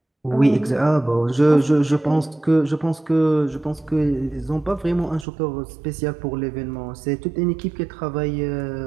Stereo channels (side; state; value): left; drops out; at 5.2 s